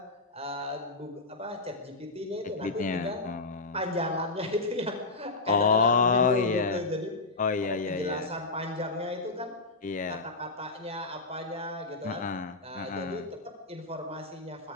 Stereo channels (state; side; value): quieter; right; 3.4 dB